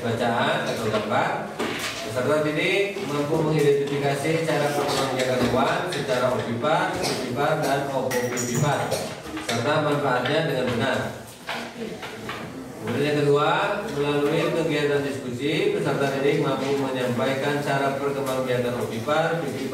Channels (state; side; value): identical; both; correlation 1.00